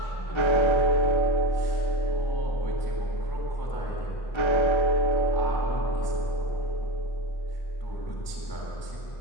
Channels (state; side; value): late; right; 1.3 ms